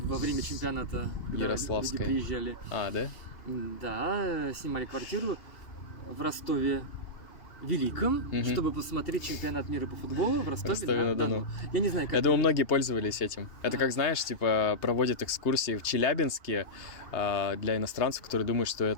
время чемпионата, когда люди приезжали. Да? Да, снимали квартиру в Ростове Великом, чтобы посмотреть чемпионат мира по футболу в Ростове-на-Дону. Я не знаю, как... Я думаю, многие пользовались этим. Это как, знаешь, типа проводят экскурсии в Челябинске для иностранцев, которые думают, что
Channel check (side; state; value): right; late; 2.8 ms